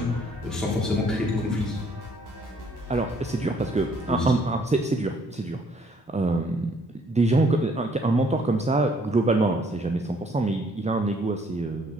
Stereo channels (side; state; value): both; normal; correlation 0.64